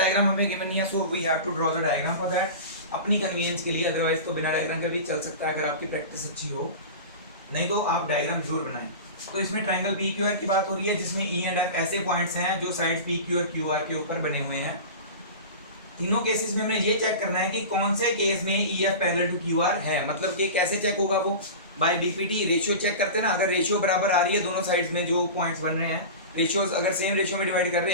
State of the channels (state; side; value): inverted; both; correlation -0.31